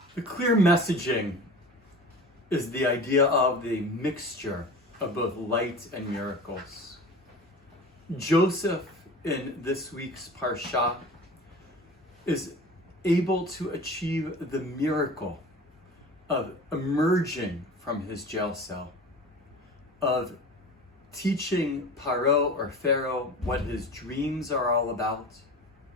The clear messaging is the idea of the mixture of both light and miracles. Joseph, in this week's Parsha, is able to achieve the miracle of emerging from his jail cell, of teaching Paro or Pharaoh what his dreams are all about.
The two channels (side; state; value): both; normal; correlation 0.36